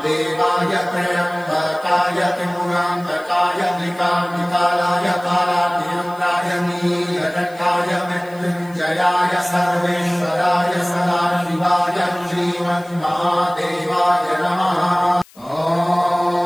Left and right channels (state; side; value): noise; left; hiss, 26 dB below the sound